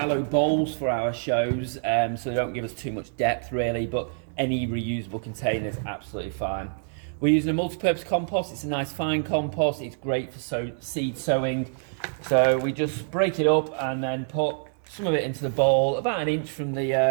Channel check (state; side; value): silent; left; 60 dB below the other